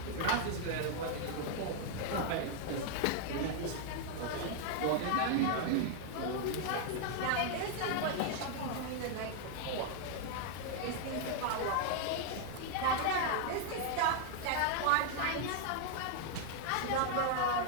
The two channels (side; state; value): both; different; correlation 0.00